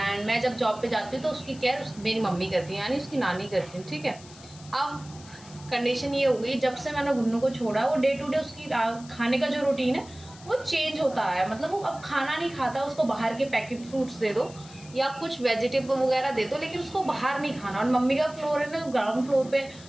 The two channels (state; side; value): noise; left; hiss, 20 dB below the sound